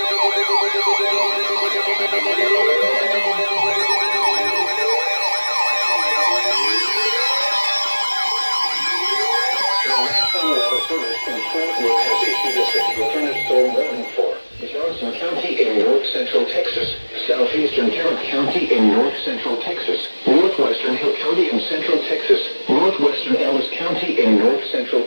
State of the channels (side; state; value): both; inverted; correlation -1.00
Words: thunderstorm warning for Johnson County in north central Texas, southeastern Tarrant County in north central Texas, northwestern Hill County in central Texas, northwestern Ellis County in north central